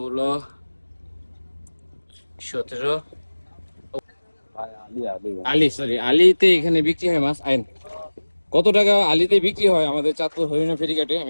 17। আলিতে এখানে বিক্রি হয় মাছ। আইন কত টাকা আলিতে বিক্রি হয় আমাদের চাঁদপুর হরিণা ফেরিঘাটে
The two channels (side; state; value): both; inverted; correlation -1.00